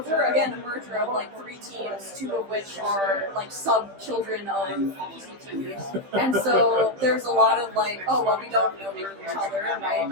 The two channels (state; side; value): late; left; 15 ms